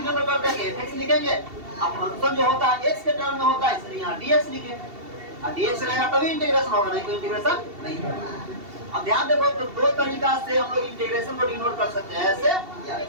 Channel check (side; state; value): left; late; 2.7 ms